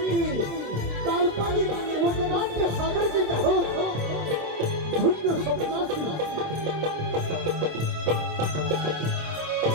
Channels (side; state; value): left; late; 27 ms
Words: काल्पनिक लोकनाट्य सादर करीत आहोत. धुंद स्वप्नाची